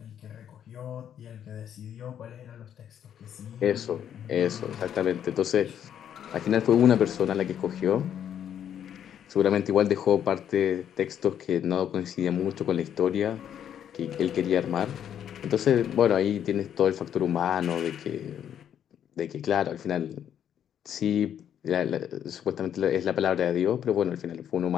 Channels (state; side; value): quieter; right; 9.5 dB